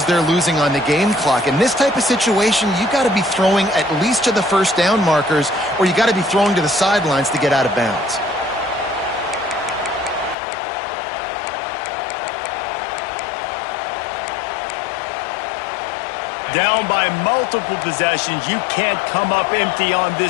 they're losing on the game clock. In this type of situation, you got to be throwing at least to the first down markers, or you got to be throwing to the sidelines to get out of bounds. Down by multiple possessions, you can't come up empty on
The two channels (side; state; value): right; drops out; at 10.4 s